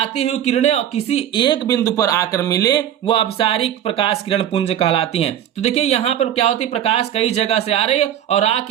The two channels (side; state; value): left; quieter; 10.7 dB